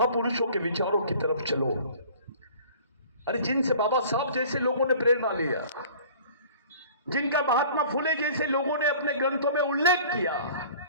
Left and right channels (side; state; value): both; inverted; correlation -0.47